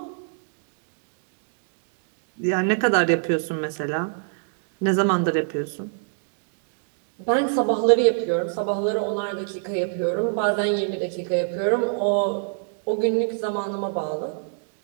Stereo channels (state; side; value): silent; left; digital silence